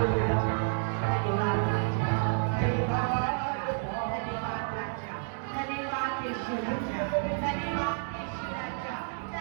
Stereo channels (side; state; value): left; silent; digital silence